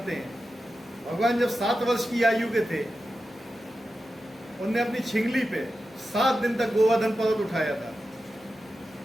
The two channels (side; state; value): both; normal; correlation 0.91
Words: हैं। भगवान जब 7 वर्ष की आयु के थे, उनने अपनी छिंगली पे 7 दिन तक गोवर्धन पर्वत उठाया था।